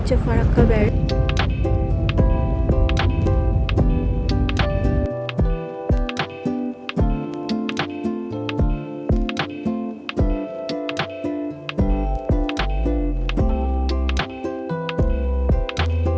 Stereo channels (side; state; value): both; identical; correlation 1.00